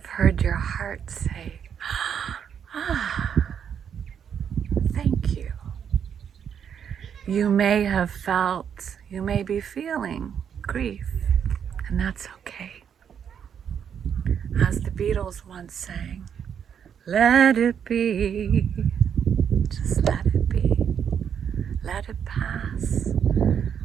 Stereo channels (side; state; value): left; quieter; 8.0 dB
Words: heard your heart say, ah, thank you. You may have felt, you may be feeling grief, and that's okay. As the Beatles once sang, let it be, just let it be, let it pass,